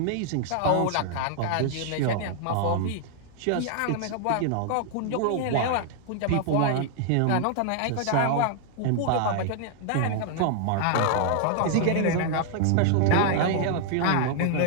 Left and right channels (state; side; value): different; both; correlation -0.01